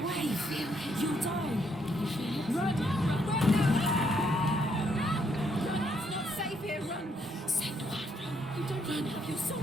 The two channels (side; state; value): both; normal; correlation 0.73